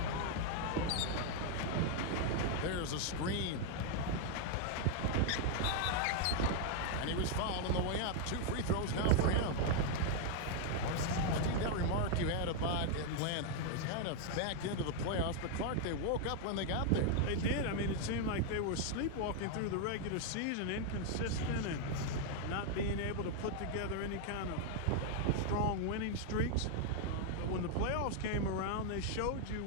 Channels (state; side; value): different; both; correlation 0.00